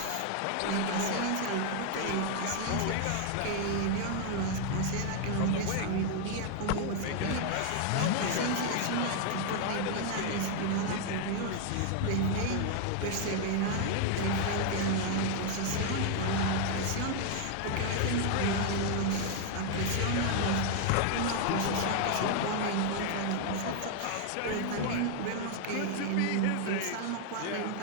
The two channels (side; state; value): both; different; correlation 0.00